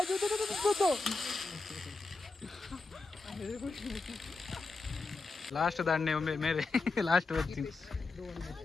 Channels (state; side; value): quieter; right; 3.8 dB